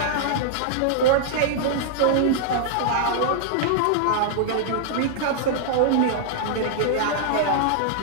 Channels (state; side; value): different; both; correlation -0.01